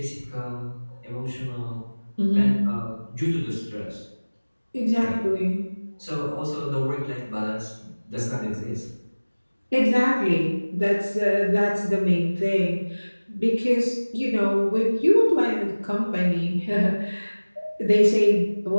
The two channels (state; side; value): inverted; both; correlation -1.00